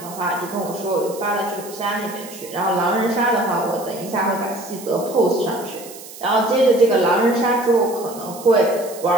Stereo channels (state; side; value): noise; right; hiss, 16 dB below the sound